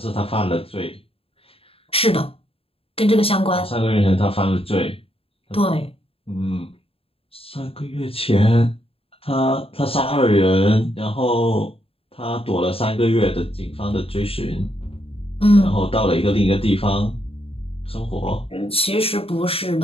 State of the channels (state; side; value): late; right; 0.27 ms